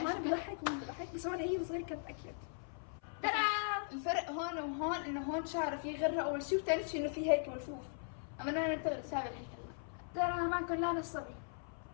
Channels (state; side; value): silent; right; 52 dB below the other